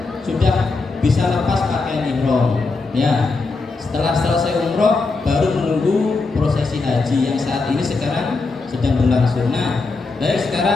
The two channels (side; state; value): right; quieter; 3.9 dB